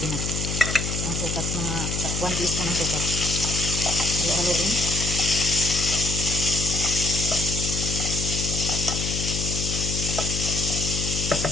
Ang sukat, mga 1 teaspoon ng sukat. Halo-haloin.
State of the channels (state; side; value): noise; left; hum, 3 dB below the sound